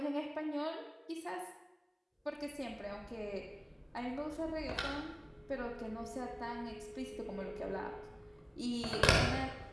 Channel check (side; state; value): both; identical; correlation 1.00